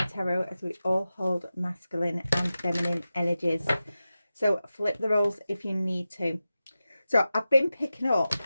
tarot as we all hold masculine and feminine energies. So flip the roles if you need to. So I've been picking up,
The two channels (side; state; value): both; inverted; correlation -0.93